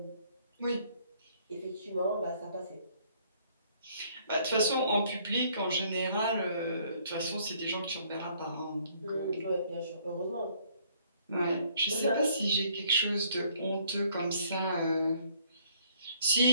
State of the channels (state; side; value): inverted; both; correlation -0.63